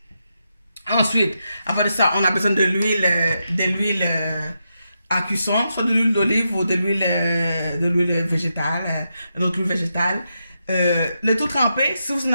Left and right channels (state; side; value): inverted; both; correlation -0.85